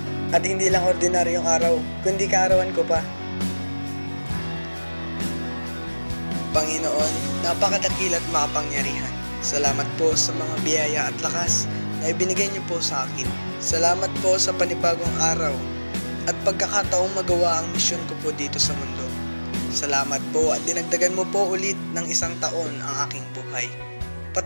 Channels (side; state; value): both; inverted; correlation -1.00